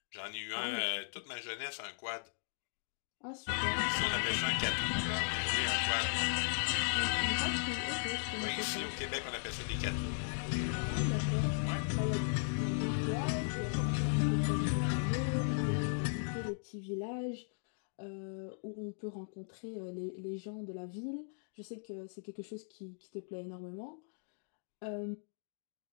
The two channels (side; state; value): right; silent; digital silence